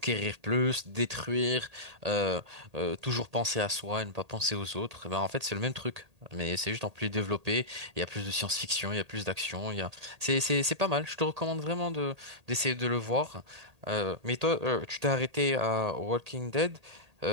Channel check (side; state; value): left; late; 1.8 ms